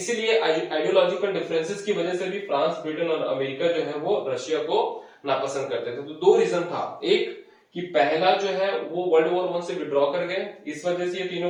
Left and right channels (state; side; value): identical; both; correlation 1.00